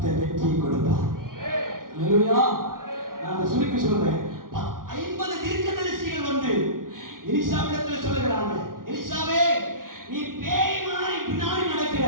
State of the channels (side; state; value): left; late; 0.91 ms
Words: வெற்றியை கொடுப்பார். அல்லேலூயா. நான் சுருக்கி சொல்றேன். 50 தீர்க்கதரிசிகள் வந்து எலிசாவிடத்தில் சொல்லுகிறாங்க, எலிசாவே, நீ பேய் மாதிரி பின்னாடி நடக்கிற,